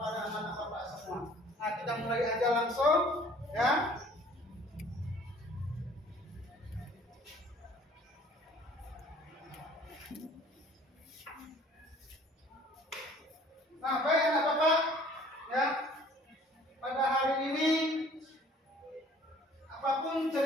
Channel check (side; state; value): both; normal; correlation 0.53